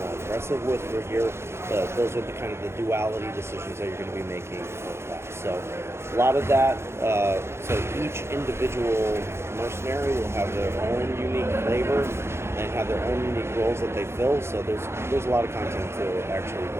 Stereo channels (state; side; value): late; left; 0.12 ms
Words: aggressive with your gear, those are the kind of the duality decisions that you're going to be making for class. So a lot of that, so each individual mercenary will have their own unique flavor and have their own unique roles that they fill. So there's a lot of content to actually